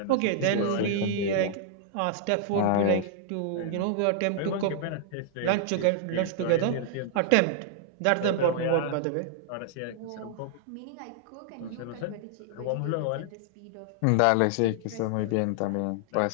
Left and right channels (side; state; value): both; different; correlation -0.01